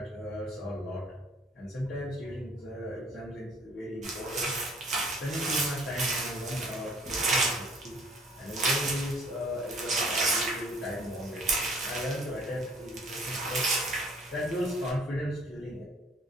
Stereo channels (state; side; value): normal; both; correlation 0.55